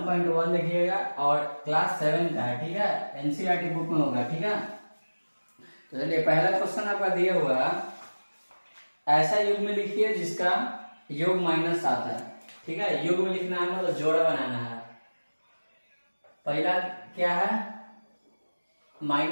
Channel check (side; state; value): both; inverted; correlation -1.00